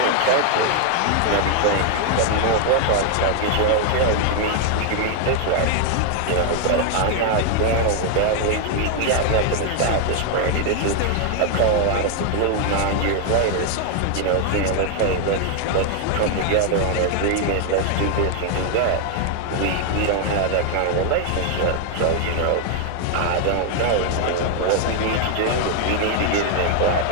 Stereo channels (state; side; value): different; both; correlation 0.00